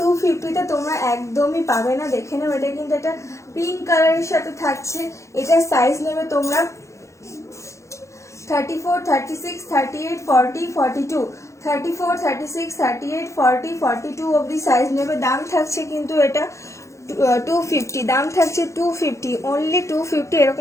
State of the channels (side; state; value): right; late; 0.14 ms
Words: তোমরা একদমই পাবে না। দেখে নাও এটা কিন্তু একটা পিঙ্ক কালারের সাথে থাকছে, এটা সাইজ নেবে তোমরা 34, 36, 38, 40, 42, 34, 36, 38, 40, 42 অবধি সাইজ নেবে। দাম থাকছে কিন্তু এটা 250, দাম থাকছে 250, অনলি 250।